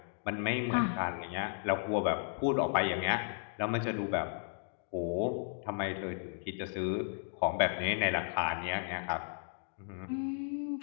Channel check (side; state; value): right; silent; digital silence